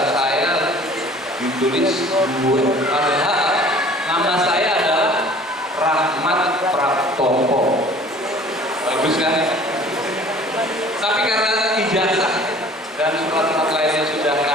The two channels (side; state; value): both; normal; correlation 0.49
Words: saya ditulis duet. Padahal nama saya adalah Rahmat Praptopo. Bagus kan? Tapi karena ijazah dan surat-surat lainnya sudah